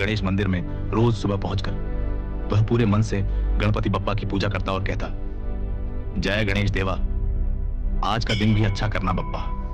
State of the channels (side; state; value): both; identical; correlation 1.00